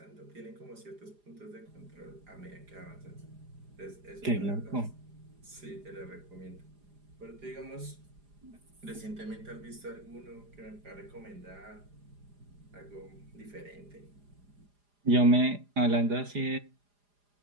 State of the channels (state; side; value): late; left; 4.9 ms